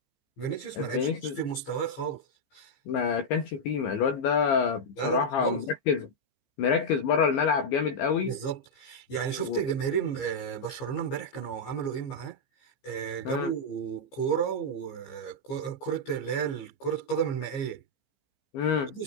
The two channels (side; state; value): right; late; 15 ms